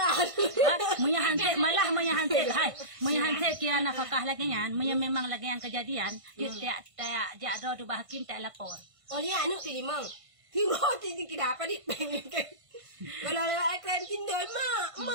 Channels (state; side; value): late; left; 1.5 ms